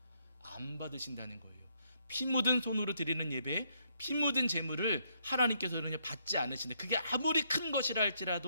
안 받으신다는 거예요. 피 묻은 손으로 드리는 예배, 피 묻은 제물을 하나님께서는 받지 않으신다. 그게 아무리 큰 것이라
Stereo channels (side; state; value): both; inverted; correlation -0.73